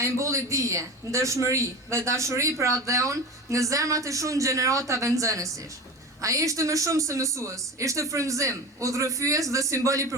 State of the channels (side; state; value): both; normal; correlation 0.29